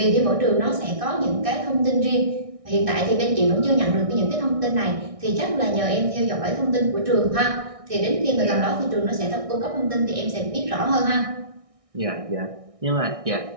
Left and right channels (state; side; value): late; left; 1.6 ms